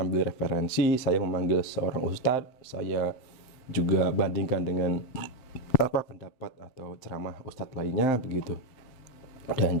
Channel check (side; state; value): right; late; 7.8 ms